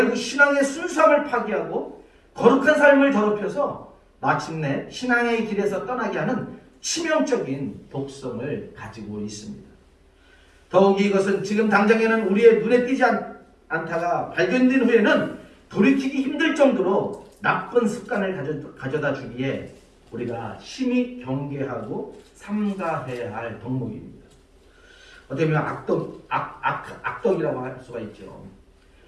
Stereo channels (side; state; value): both; identical; correlation 1.00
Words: 신앙의 순수함을 파괴하고 거룩한 삶을 더럽혀서 마침내 신앙의 길에서 떠나게 하는 치명적인 독성을 가지고 있습니다. 더욱이 이것은 지금 당장에는 우리의 눈에 띄지 않다가 발견된 후에는 돌이키기 힘들 정도로 나쁜 습관을 가져다 주기에 우리가 심히 경계하고 삼가해야 할 덕목입니다. 어떻게 보면 악덕이라고 할 수가 있죠.